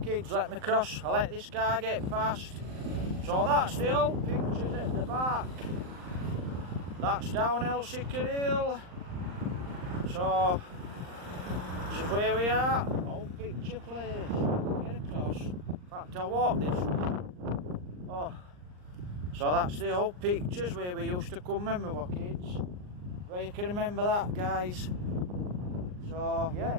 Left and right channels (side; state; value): left; late; 39 ms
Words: Let me cross. I'll let this car get past. So that's the old pictures at the back. That's down Elsecar Hill. So, this is where we are. Old picture place. Get across. In fact, I'll walk this way. Oh. So that's the old pictures where we used to come when we were kids. Well, you can remember that, guys. So, yeah,